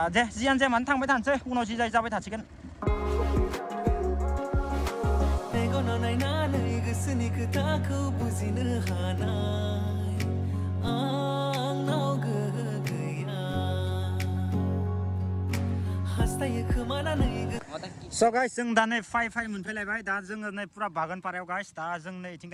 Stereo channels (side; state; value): both; identical; correlation 1.00